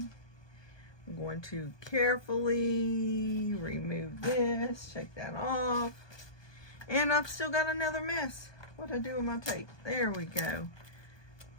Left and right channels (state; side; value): late; right; 1.2 ms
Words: I'm going to carefully remove this, take that off. And I've still got another mess. What'd I do with my tape? There we go.